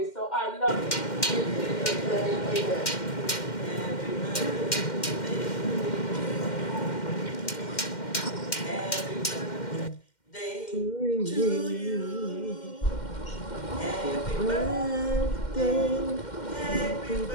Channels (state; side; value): late; right; 2.1 ms